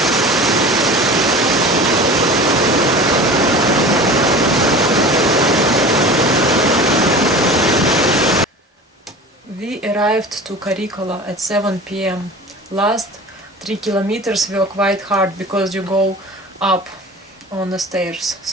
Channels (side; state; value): both; normal; correlation 0.37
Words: We arrived to Karikola at 7 p.m. Last 3 kilometers were quite hard because you go up on the stairs,